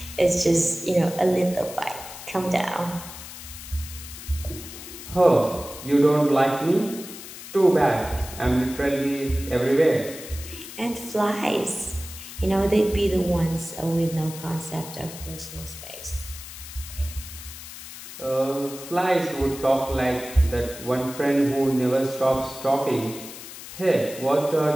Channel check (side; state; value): left; noise; hiss, 13 dB below the sound